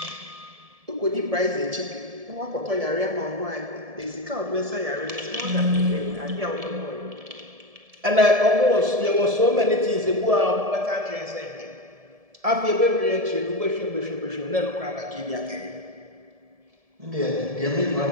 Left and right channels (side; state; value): left; late; 1.7 ms